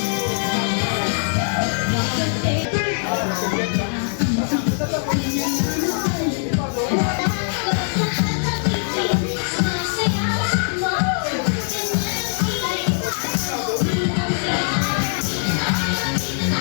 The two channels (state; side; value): silent; right; 63 dB below the other